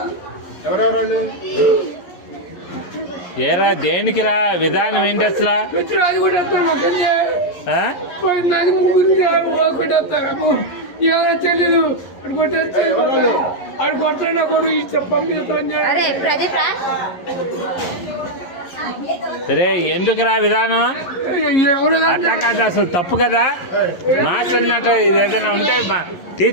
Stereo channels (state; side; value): late; right; 11 ms